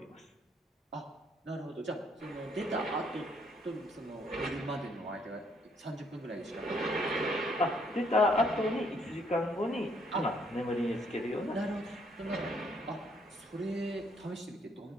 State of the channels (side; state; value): both; normal; correlation 0.68